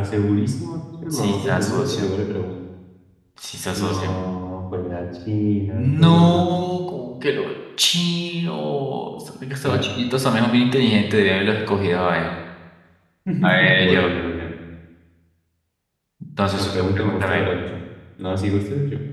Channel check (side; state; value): both; identical; correlation 1.00